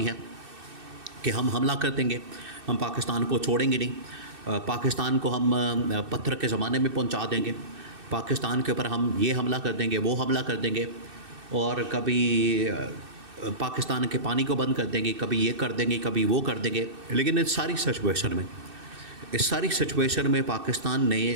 ہیں کہ ہم حملہ کر دیں گے، ہم پاکستان کو چھوڑیں گے نہیں، پاکستان کو ہم پتھر کے زمانے میں پہنچا دیں گے، پاکستان کے اوپر ہم یہ حملہ کر دیں گے، وہ حملہ کر دیں گے، اور کبھی پاکستان کے پانی کو بند کر دیں گے، کبھی یہ کر دیں گے، کبھی وہ کر دیں گے۔ لیکن اس ساری سچویشن میں پاکستان نے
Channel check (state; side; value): late; left; 2.6 ms